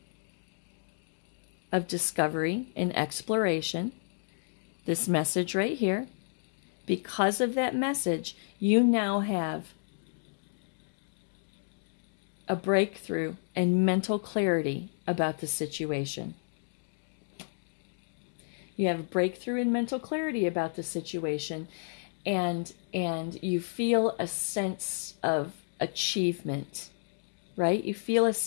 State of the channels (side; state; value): right; silent; digital silence